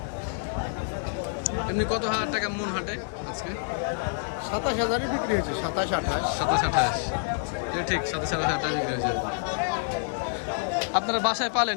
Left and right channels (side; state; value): right; silent; 60 dB below the other